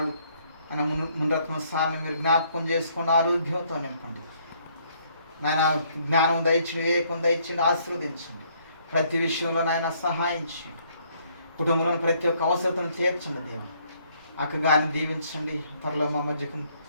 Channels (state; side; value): inverted; both; correlation -0.67